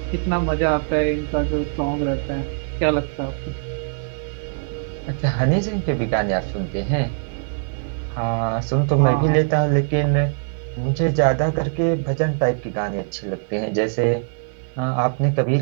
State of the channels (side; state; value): left; silent; digital silence